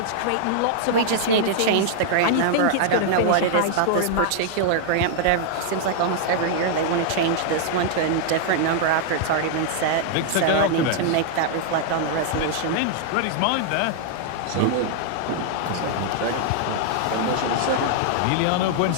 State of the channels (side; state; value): both; different; correlation -0.01